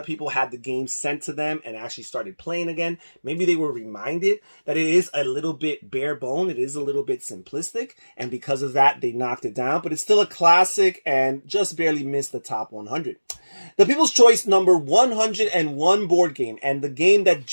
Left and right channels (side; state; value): both; inverted; correlation -1.00